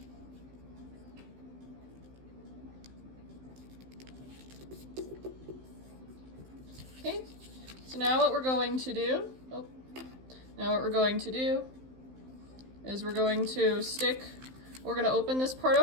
Okay, so now what we're going to do, is we're going to open this part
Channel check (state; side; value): late; left; 15 ms